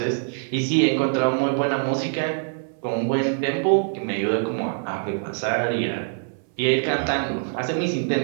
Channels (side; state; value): left; silent; 63 dB below the other